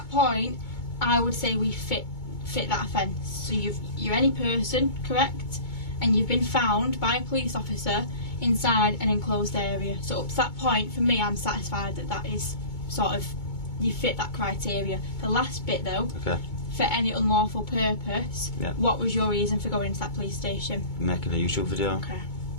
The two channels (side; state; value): right; late; 2.2 ms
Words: point, I would say we fit that offence. So you're any person, correct? And you've been found by a police officer inside an enclosed area. So up to that point, for me, I'm satisfied that is sort of, you fit that criteria. The last bit though, okay, for any unlawful purpose, what was your reason for going to that police station? Making a YouTube video. Okay.